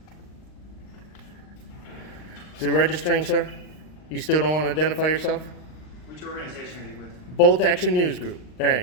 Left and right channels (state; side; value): late; right; 39 ms